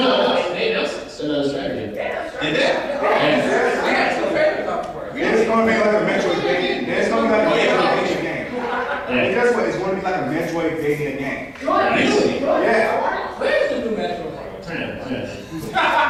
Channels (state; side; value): identical; both; correlation 1.00